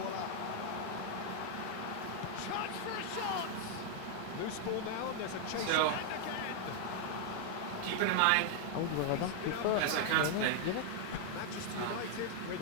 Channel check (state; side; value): different; both; correlation 0.00